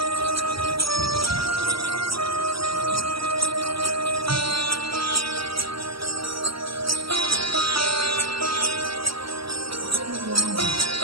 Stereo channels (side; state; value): left; late; 0.75 ms